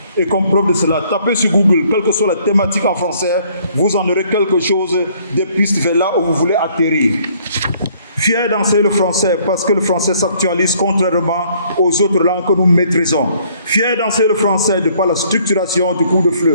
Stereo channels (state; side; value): inverted; both; correlation -0.62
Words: Et comme preuve de cela, tapez sur Google, quelle que soit la thématique en français, vous en aurez quelque chose des pistes vers là où vous voulez atterrir. Fier d'enseigner le français parce que le français s'actualise contrairement aux autres langues que nous maîtrisons. Fier d'enseigner le français de par la structuration du cours de